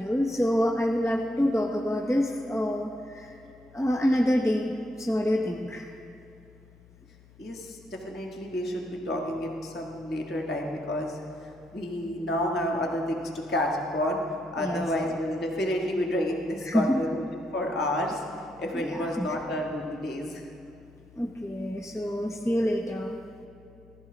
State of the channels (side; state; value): left; noise; hum, 25 dB below the sound